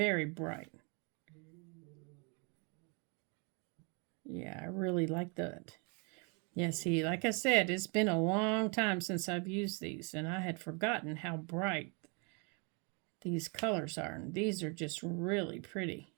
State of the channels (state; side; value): quieter; left; 34.4 dB